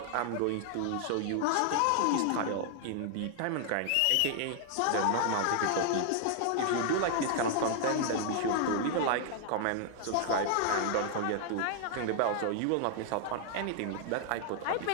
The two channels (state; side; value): different; both; correlation 0.00